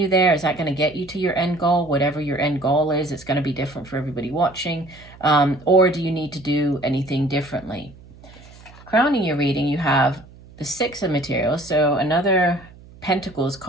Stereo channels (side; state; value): right; noise; hum, 22 dB below the sound